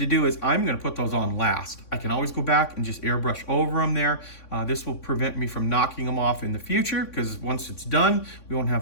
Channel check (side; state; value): right; late; 3.5 ms